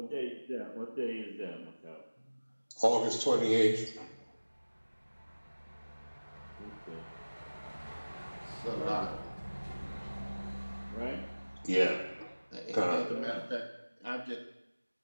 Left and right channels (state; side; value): inverted; both; correlation -1.00